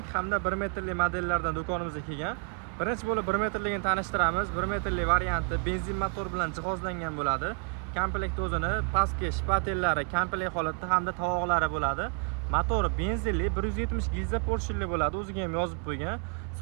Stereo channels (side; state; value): left; quieter; 35.4 dB